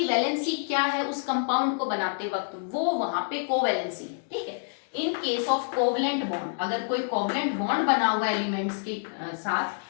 वैलेंसी क्या है उस कंपाउंड को बनाते वक्त, वो वहां पे कोवैलेंसी है। ठीक है, in case of covalent bond, अगर कोई कोवलेंट बॉन्ड बना हुआ एलिमेंट्स के साथ,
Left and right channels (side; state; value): right; silent; digital silence